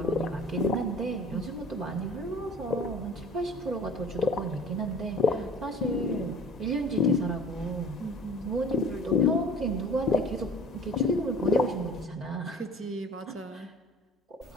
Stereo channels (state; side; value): normal; both; correlation 0.46